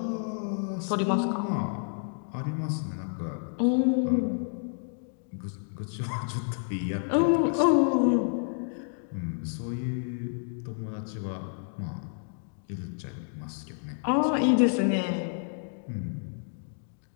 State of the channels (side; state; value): right; silent; digital silence